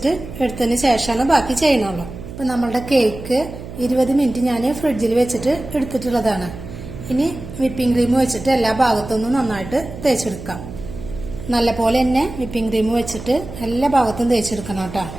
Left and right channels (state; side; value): noise; right; hum, 12 dB below the sound